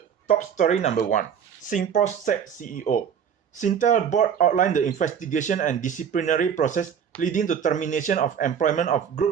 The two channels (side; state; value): left; quieter; 7.9 dB